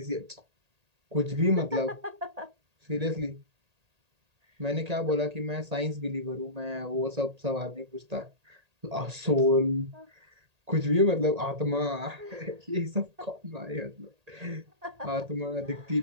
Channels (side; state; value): left; late; 1.8 ms